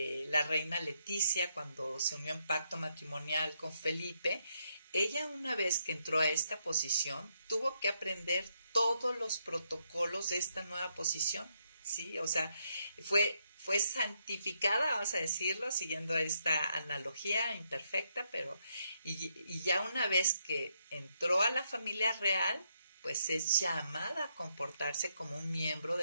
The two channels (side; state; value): both; inverted; correlation -0.77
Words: la reina Leticia cuando se unió en pacto matrimonial con Felipe, ella una vez que entró a esta posición tuvo que aprender todos los protocolos de esta nueva posición, ¿sí? O sea, fue santificada, vamos a decirlo, siguiendo esta analogía imperfecta, pero y ya una vez que entró a la familia real, pues es llamada a comportarse como un miembro